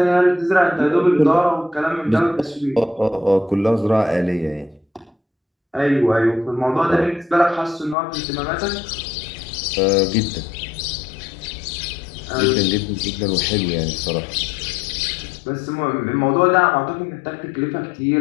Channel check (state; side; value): drops out; right; at 8.0 s